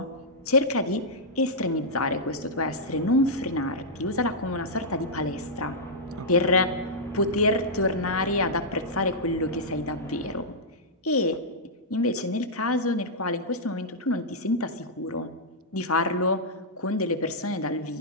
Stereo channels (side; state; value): both; normal; correlation -0.09